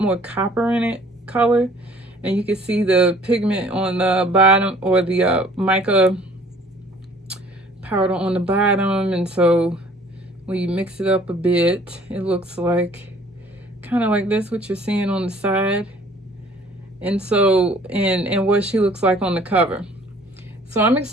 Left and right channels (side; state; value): both; normal; correlation 0.54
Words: copper in it color. And you can see the pigment on the bottom, or the mica powder on the bottom. And so when you mix it up a bit, it looks like kind of like this, what you're seeing on the side. And so, and what she looks like on the cover. So I'm